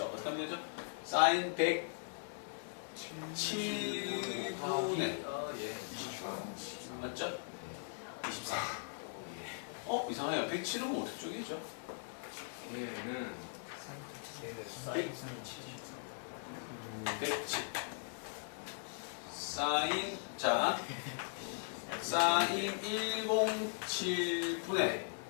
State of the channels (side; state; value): right; silent; digital silence